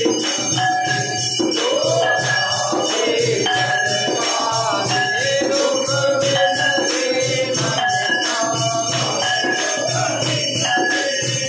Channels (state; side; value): identical; both; correlation 1.00